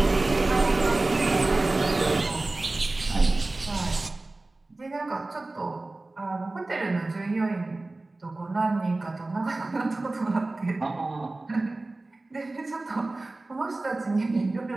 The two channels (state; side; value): quieter; left; 3.0 dB